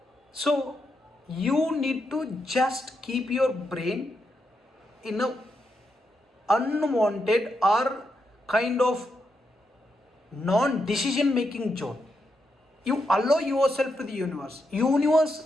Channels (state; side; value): normal; both; correlation 0.83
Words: So you need to just keep your brain in a unwanted or kind of non-decision making zone. You allow yourself to the universe.